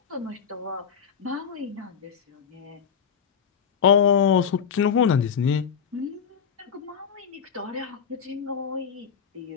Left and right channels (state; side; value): quieter; right; 7.2 dB